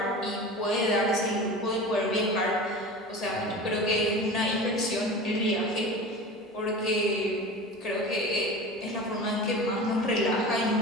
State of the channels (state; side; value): normal; both; correlation 0.33